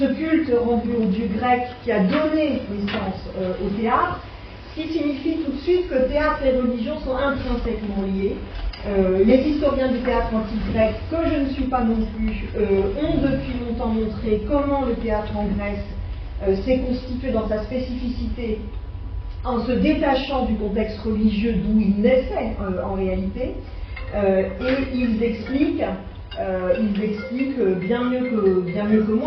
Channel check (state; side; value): identical; both; correlation 1.00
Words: culte rendu au dieu grec qui a donné naissance au théâtre, ce qui signifie tout de suite que théâtre et religion sont intrinsèquement liés. Les historiens du théâtre antique grec, que je ne suis pas non plus, ont depuis longtemps montré comment le théâtre en Grèce s'est constitué dans sa spécificité en se détachant du contexte religieux d'où il naissait en réalité, et ils expliquent bien mieux que